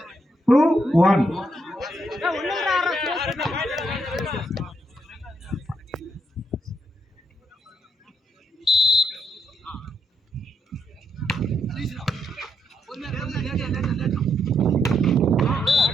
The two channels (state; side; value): normal; both; correlation 0.77